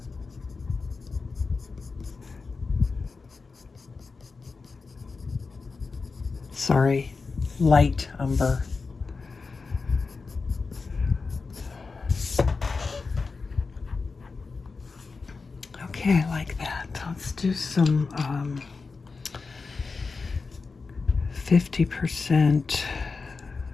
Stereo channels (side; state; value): right; quieter; 4.4 dB